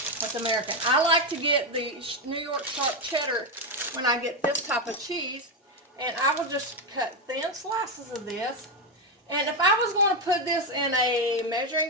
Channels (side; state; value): both; normal; correlation 0.08